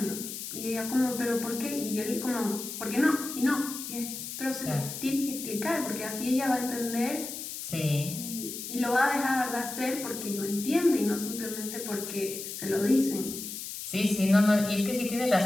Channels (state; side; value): noise; left; hiss, 8 dB below the sound